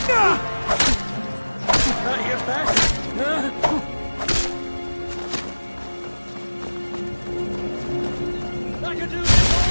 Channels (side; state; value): both; inverted; correlation -1.00